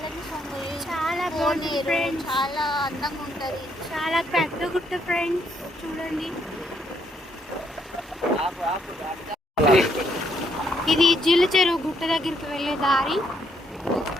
సొంగు చాలా బాగుంది ఫ్రెండ్స్. చాలా అందంగా ఉంటుంది. చాలా పెద్ద గుట్ట ఫ్రెండ్స్. చూడండి, ఇది జీలచెరువు గుట్ట దగ్గరికి వెళ్ళే దారి.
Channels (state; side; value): normal; both; correlation 0.72